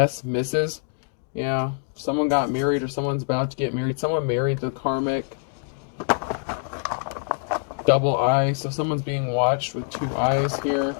Mrs. Yeah, someone got married or someone's about to get married. Someone married the karmic. Double I, so someone's being watched with two eyes here.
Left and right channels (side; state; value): right; silent; 62 dB below the other